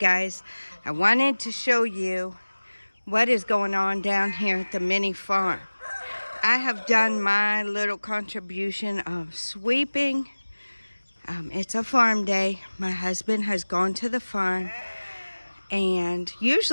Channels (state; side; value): inverted; both; correlation -1.00